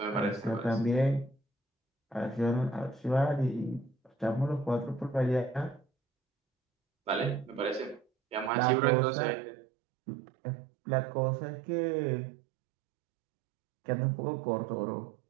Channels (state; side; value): drops out; left; at 8.5 s